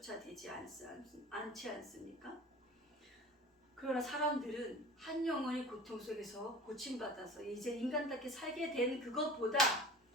되지 않지 않습니까? 그러나 사람들은 한 영혼이 고통 속에서 고침받아서 이제 인간답게 살게 된 그것보다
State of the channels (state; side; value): normal; both; correlation 0.39